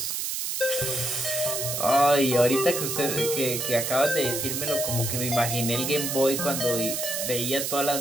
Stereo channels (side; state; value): right; noise; hiss, 2 dB below the sound